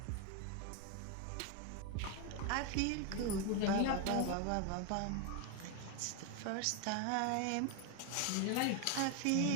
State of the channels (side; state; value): both; different; correlation 0.01